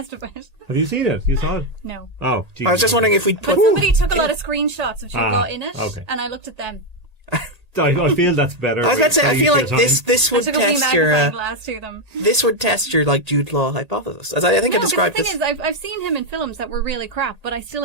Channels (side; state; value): left; late; 1.8 ms